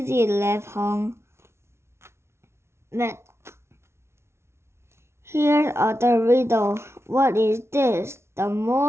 laughed Hong. But here's other riddle. What is this? The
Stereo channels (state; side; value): late; left; 0.13 ms